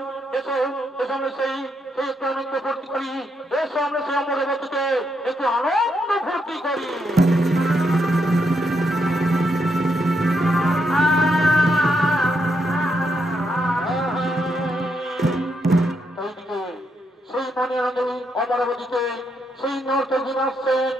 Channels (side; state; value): both; normal; correlation 0.79